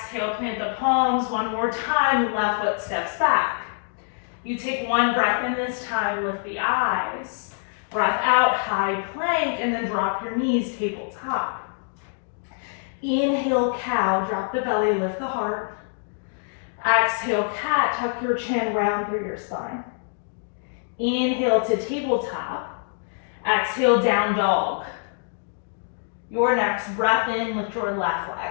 plant the palms one more time, left foot steps back. You take one breath in this time, lift the eyes. Breath out, high plank, and then drop your knees, tabletop. Inhale, cow, drop the belly, lift the heart. Exhale, cat, tuck your chin round through your spine. Inhale to tabletop. Exhale, down dog. Your next breath in, lift your left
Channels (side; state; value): right; silent; digital silence